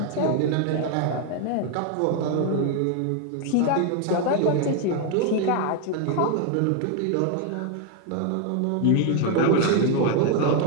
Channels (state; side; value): different; both; correlation 0.01